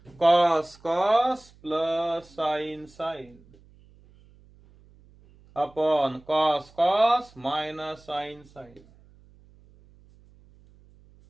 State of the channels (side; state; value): right; noise; hum, 27 dB below the sound